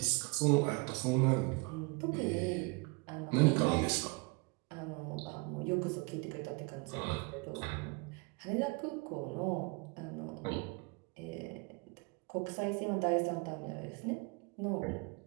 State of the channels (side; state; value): left; quieter; 29.1 dB